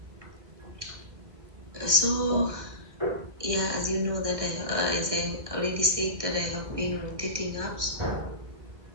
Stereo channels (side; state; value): left; late; 1.6 ms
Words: So, yeah, as you know that as I already said that I have been on dating apps